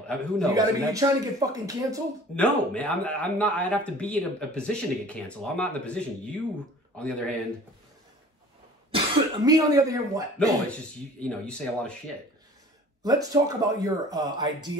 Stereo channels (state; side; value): normal; both; correlation 0.47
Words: Who knows? You trying to get fucking canceled? No, man. I'm not. I'd have to be in a position to get canceled. I'm not in the position. You, on the other hand. Me, on the other hand, what? No, it's just, you say a lot of shit. Let's talk about your